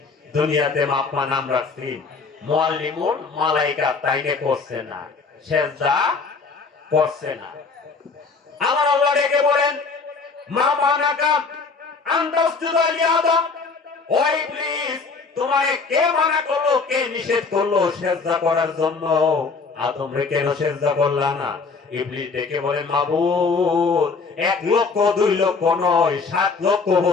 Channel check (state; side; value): quieter; right; 4.6 dB